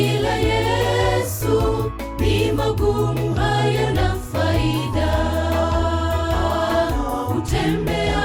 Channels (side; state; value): both; identical; correlation 1.00